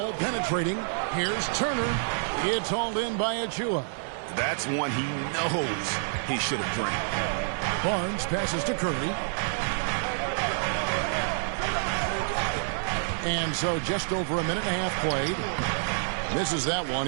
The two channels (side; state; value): left; silent; digital silence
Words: penetrating. Here's Turner. It's hauled in by Achiuwa. That's one he knows he should have drained. Barnes passes to Curry. And so just over a minute and a half played. Misses that one.